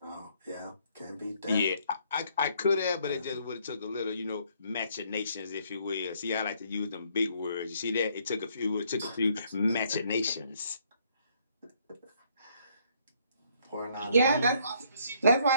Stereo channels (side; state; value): both; inverted; correlation -0.67